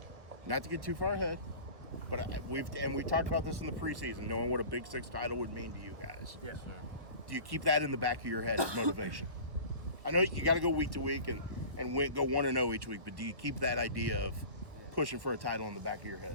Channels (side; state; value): left; late; 1.5 ms